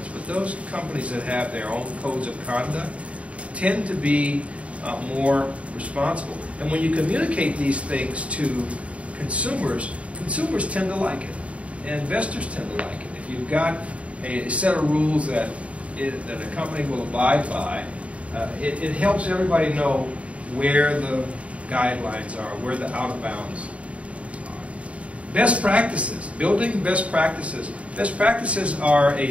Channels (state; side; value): late; left; 0.064 ms